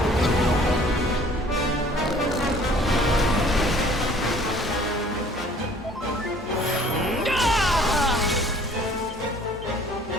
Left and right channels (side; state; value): both; normal; correlation 0.54